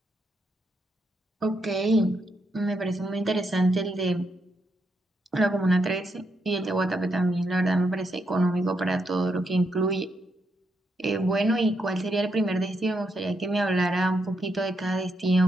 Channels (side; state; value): both; normal; correlation 0.80